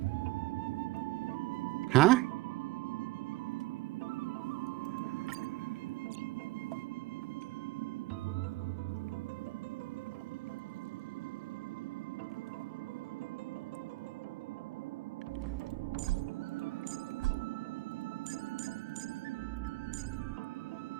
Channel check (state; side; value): quieter; left; 19.7 dB